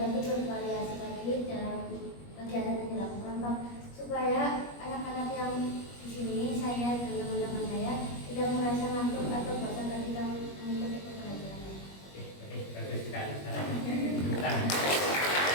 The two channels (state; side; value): late; right; 21 ms